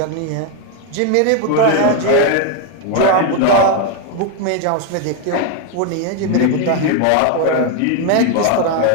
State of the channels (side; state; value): both; different; correlation 0.01